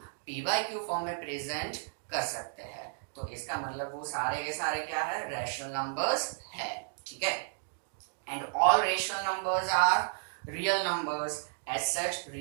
PYQ फॉर्म में प्रेजेंट कर सकते हैं। तो इसका मतलब वो सारे के सारे क्या है, रैशनल नंबर्स है, ठीक है। And all rational numbers are real numbers. As such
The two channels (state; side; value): silent; left; digital silence